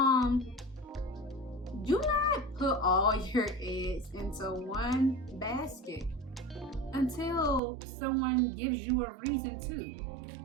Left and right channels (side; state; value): left; drops out; at 7.6 s